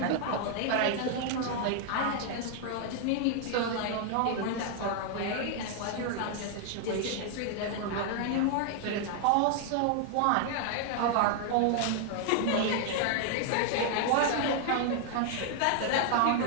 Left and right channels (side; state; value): both; different; correlation 0.00